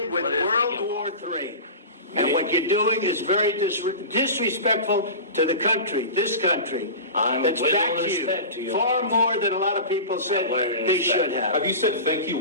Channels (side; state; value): both; inverted; correlation -0.31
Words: with World War III. And what you're doing is very disrespectful to the country, this country, that's backed you far more than a lot of people said they should have. Have you said thank you